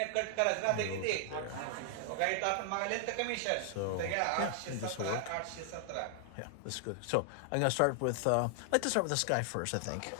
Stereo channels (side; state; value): both; different; correlation 0.00